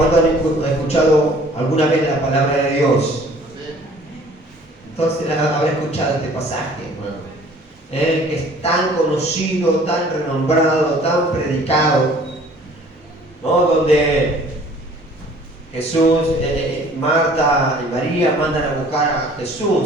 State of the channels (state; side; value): normal; both; correlation 0.53